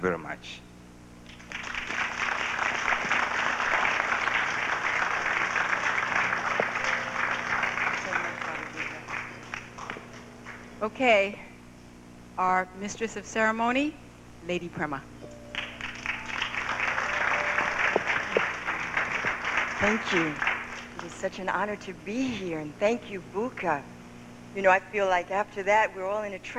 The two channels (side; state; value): both; identical; correlation 1.00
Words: much. Okay, our mistress of ceremony, Lady Prema. Thank you. It is such an honor to be here, and thank you, Buka. You know, I feel like after that we're all in a